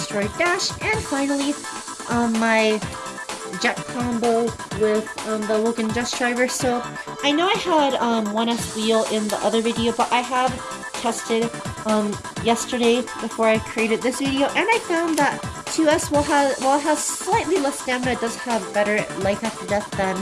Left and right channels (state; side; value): identical; both; correlation 1.00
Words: Dash. And finally, my jet combo with the Logan Just Driver. So I know I had 1S wheel in the other video, but I have tested yesterday before I created this video, and I found that 2S, while it has slightly less stamina, it does have better life after death than